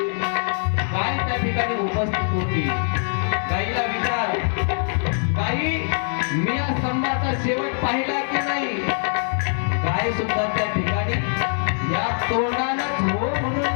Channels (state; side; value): silent; right; 63 dB below the other